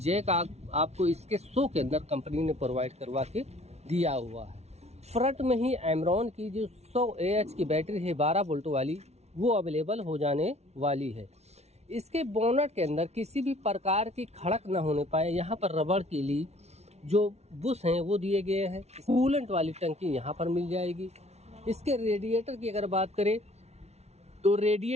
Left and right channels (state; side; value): late; left; 0.31 ms